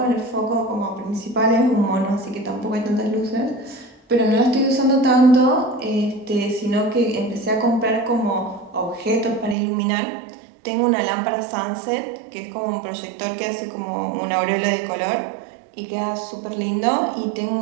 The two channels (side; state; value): left; drops out; at 9.6 s